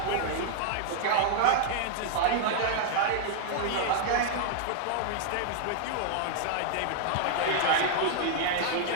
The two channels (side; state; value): both; different; correlation -0.01